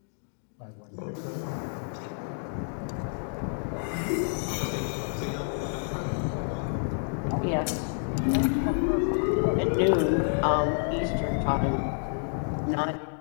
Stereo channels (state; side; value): silent; right; 59 dB below the other